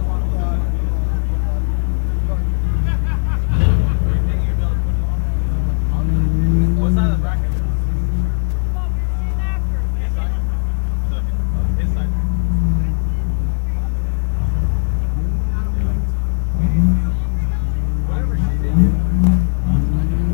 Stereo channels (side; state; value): right; silent; 56 dB below the other